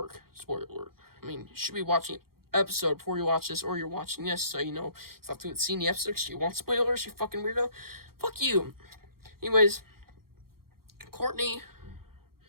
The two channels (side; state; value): left; late; 0.94 ms